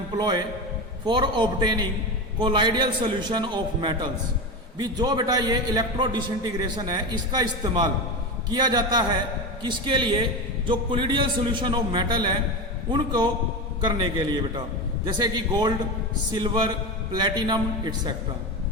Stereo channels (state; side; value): normal; both; correlation 0.20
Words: for obtaining colloidal solution of metals. भी जो बेटा ये इलेक्ट्रो डिसइंटीग्रेशन है इसका इस्तेमाल किया जाता है किसके लिए? जो कोलिडियल सॉल्यूशन ऑफ मेटल है उनको करने के लिए बेटा, जैसे कि गोल्ड, सिल्वर, प्लेटिनम एटसेट्रा।